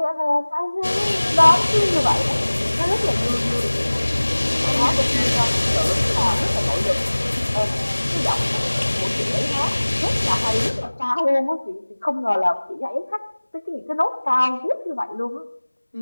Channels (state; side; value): inverted; both; correlation -1.00